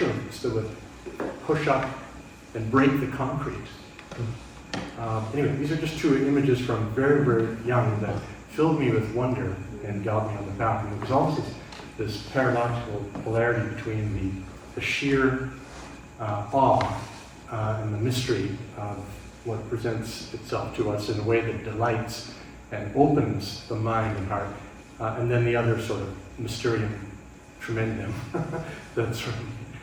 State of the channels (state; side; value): identical; both; correlation 1.00